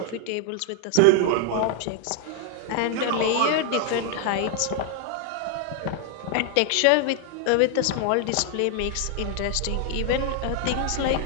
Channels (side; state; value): both; different; correlation 0.00